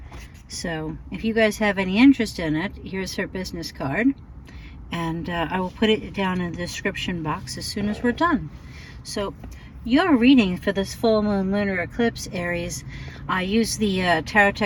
So if you guys have any interest in it, here's her business card, and I will put it down in the description box as soon as we're done. So your reading for this full moon lunar eclipse, Aries, I use the Tarot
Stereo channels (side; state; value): both; identical; correlation 1.00